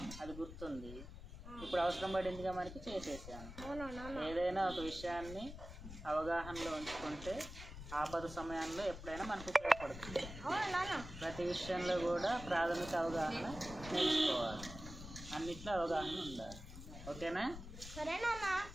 అది గుర్తుంది. ఇప్పుడు అవసరం పడిందిగా మనకి చేసేసాను. ఏదైనా ఒక విషయాన్ని అవగాహనలో ఉంచుకుంటే ఆపద సమయంలో ఎప్పుడైనా మనకు ఉపయోగపడుతుంది. ప్రతి విషయంలో కూడా ప్రాథమిక అవగాహన నేర్చుకోవాలి, అన్నిట్లో అవగాహన ఉండాలి. ఓకేనా? సరే నాన్న.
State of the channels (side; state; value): left; noise; rumble, 11 dB below the sound